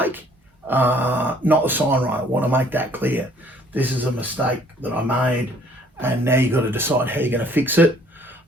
not the sign writer. I want to make that clear. This is a mistake that I made, and now you've got to decide how you're going to fix it.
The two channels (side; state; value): both; normal; correlation 0.59